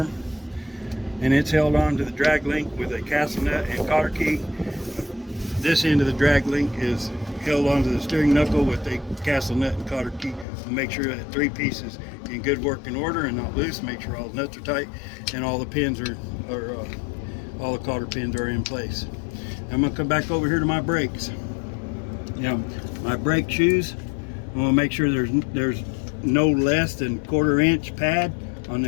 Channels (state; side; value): drops out; right; at 10.5 s